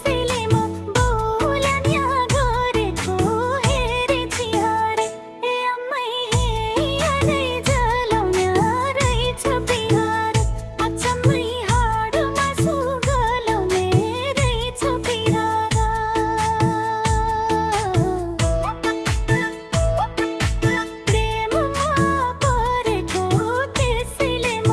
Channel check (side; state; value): both; identical; correlation 1.00